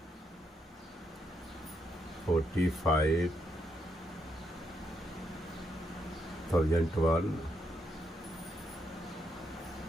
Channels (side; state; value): both; normal; correlation 0.78